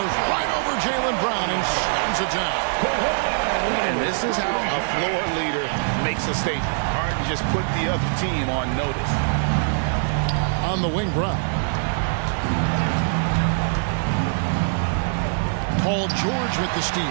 right over Jaylen Brown and slams it down. And this is how a floor leader makes a statement. Harden just put the other team on notice. On the wing, Brown. Paul George with the steal.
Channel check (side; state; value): left; silent; digital silence